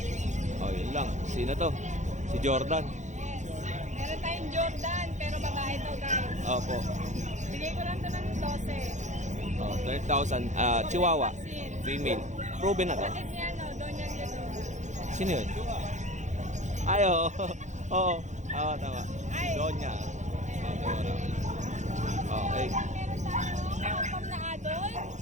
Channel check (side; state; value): left; late; 0.35 ms